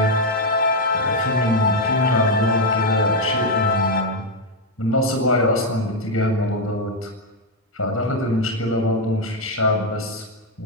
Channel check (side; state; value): both; normal; correlation 0.02